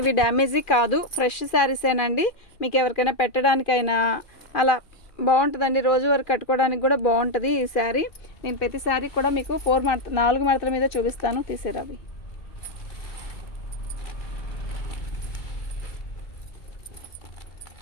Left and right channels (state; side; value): late; right; 2.4 ms